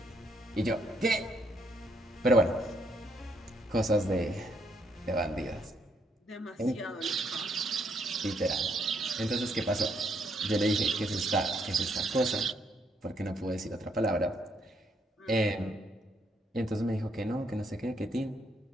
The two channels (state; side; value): normal; both; correlation 0.73